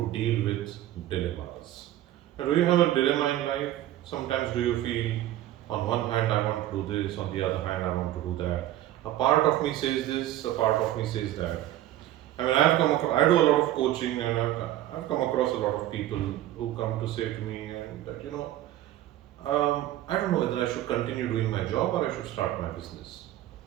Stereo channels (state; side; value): quieter; left; 13.7 dB